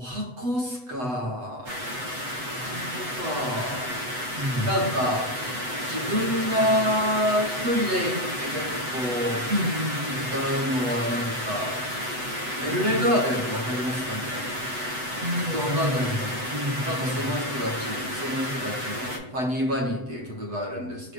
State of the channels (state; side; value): late; left; 8.0 ms